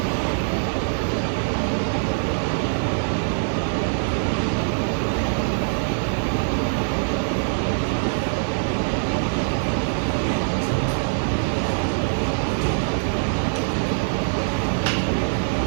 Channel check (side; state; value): left; silent; 61 dB below the other